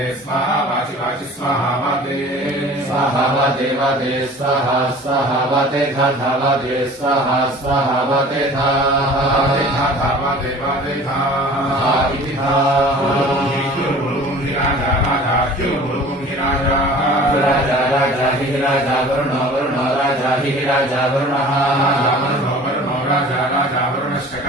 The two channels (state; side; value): normal; both; correlation 0.44